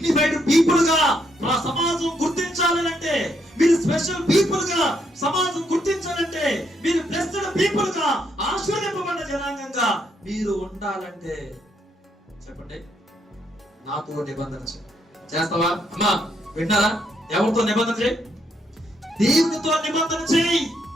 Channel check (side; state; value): both; normal; correlation 0.75